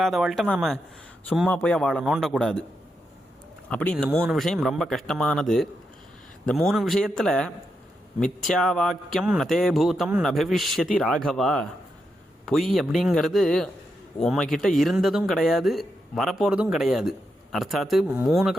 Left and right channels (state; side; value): normal; both; correlation 0.84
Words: நாம் சும்மா போய் அவளை நோண்டக்கூடாது. அப்படி இந்த 3 விஷயம் ரொம்ப கஷ்டமானது. இந்த 3 விஷயத்தில் மித்யா வாக்கியம் நதே பூதம் நபவிஷ்யதி ராகவா. பொய் அப்படிங்கிறது உம்மக்கிட்ட இருந்ததும் கிடையாது, வரப்போகிறதும் கிடையாது. அர்த்தாத்து 3